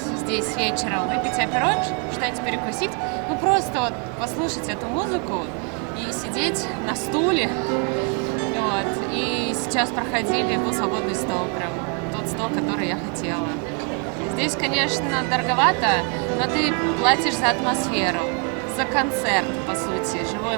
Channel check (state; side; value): quieter; left; 38.1 dB